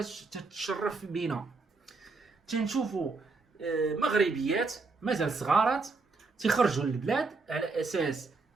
تتشرف بينا. تنشوفوا مغربيات مازال صغارات تيخرجوا للبلاد على اساس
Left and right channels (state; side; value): quieter; left; 4.0 dB